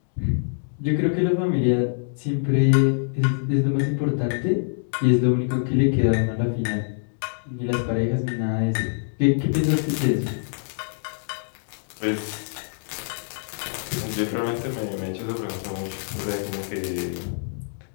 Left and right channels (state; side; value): silent; right; digital silence